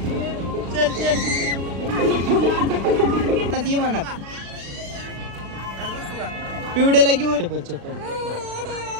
चल चल ती म्हणत पिवड्याला घेऊ चप्पल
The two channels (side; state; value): left; late; 36 ms